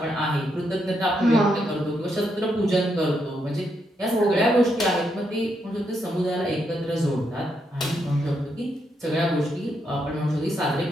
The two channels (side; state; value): both; normal; correlation 0.79